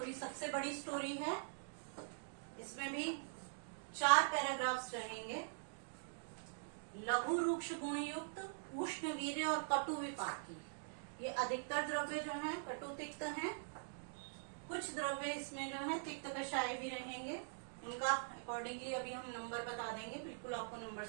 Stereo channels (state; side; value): silent; left; digital silence